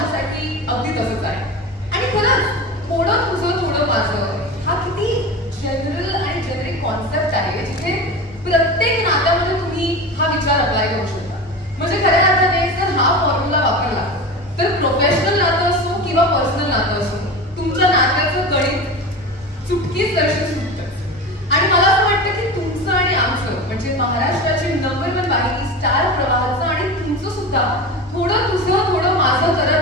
अगदी तसंच आहे. आणि खरंच थोडं तुझं थोडं माझं हा किती जनरल आणि जेनेरिक कॉन्सेप्ट आहे जिथे प्रत्येक नात्यामध्ये तुम्ही हा विचार अप्लाय करू शकता. म्हणजे खऱ्या अर्थाने जर हा फॉर्म्युला वापरला तर प्रोफेशनल नातं असो किंवा पर्सनल नातं असो, तुमच्या नात्याचं गणित चुटकीच दर्शन सुटतं. आणि मला असं वाटतं की तुमचं आणि आमचं म्हणजे महाराष्ट्राची नंबर 1 वाहिनी स्टार प्रवाहाचं आणि तुमचं सुद्धा थोडं तुझं थोडं माझं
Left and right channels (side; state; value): both; normal; correlation 0.28